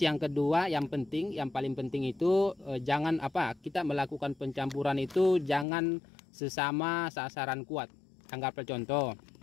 yang kedua, yang paling penting itu jangan kita melakukan pencampuran itu jangan sesama sasaran kuat. Anggaplah contoh,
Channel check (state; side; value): drops out; right; at 5.7 s